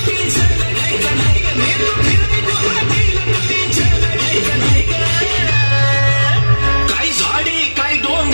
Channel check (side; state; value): both; inverted; correlation -1.00